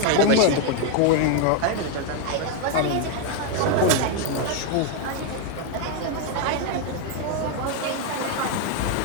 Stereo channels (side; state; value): both; different; correlation 0.01